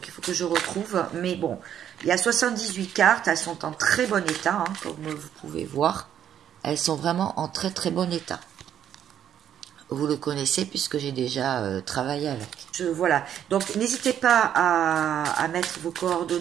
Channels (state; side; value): quieter; left; 9.9 dB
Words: il faut que je retrouve. Mais bon, il y a 78 cartes. Elles sont en très bon état, hein, comme vous pouvez voir. Elles sont vraiment en très très bon état. Vous le connaissez puisque j'ai déjà travaillé avec. Voilà. Donc, n'hésitez pas à mettre vos